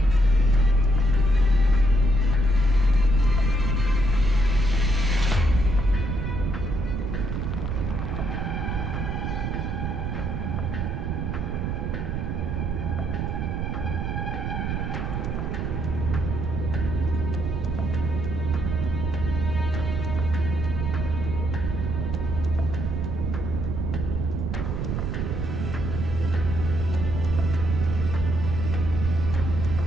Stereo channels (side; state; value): right; noise; rumble, 2 dB below the sound